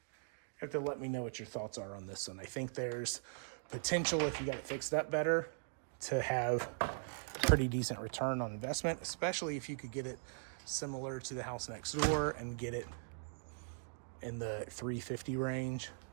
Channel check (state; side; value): silent; left; digital silence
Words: have to let me know what your thoughts are on this one. I think there's potential, if you got it fixed up better, to have pretty decent return on investment, especially if you could get it similar to the house next door and get it in the 350 range.